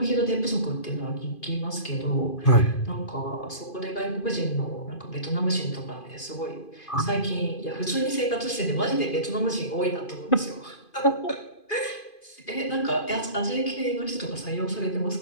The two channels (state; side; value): late; right; 2.5 ms